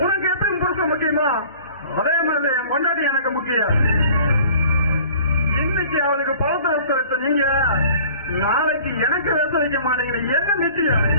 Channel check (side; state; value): both; inverted; correlation -0.49